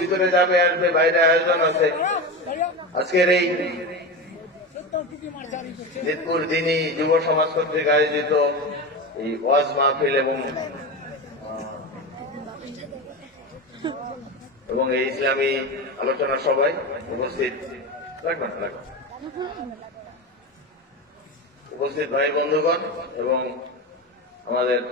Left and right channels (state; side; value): normal; both; correlation 0.22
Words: ভিতরে যাবে আসবে, বাইরে আয়োজন আছে। আজকের এই জিতপুর দিনী যুব সমাজ কর্তৃক আয়োজিত এই ওয়াজ মাহফিল এবং এই ইসলামী আলোচনা সভায় উপস্থিত উপস্থিত ভাই বন্ধুগণ এবং আমাদের